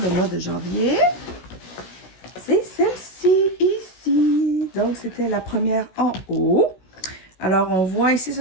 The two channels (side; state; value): right; late; 16 ms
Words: mois de janvier, c'est celle-ci, ici. Donc, c'était la première en haut. Alors, on voit ici,